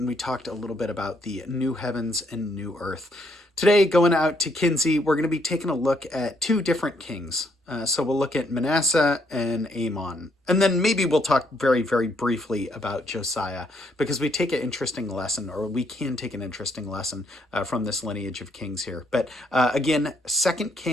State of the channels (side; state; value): both; normal; correlation 0.72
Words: we talked a little bit about the new heavens and new earth. Today, going out to Kinsey, we're going to be taking a look at two different kings. So we'll look at Manasseh and Amon. And then maybe we'll talk very, very briefly about Josiah, because we take an interesting lesson, or we can take an interesting lesson from this lineage of kings here. But again, 2